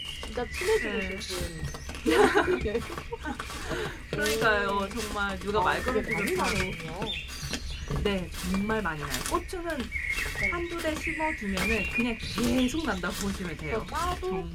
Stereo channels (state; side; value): identical; both; correlation 1.00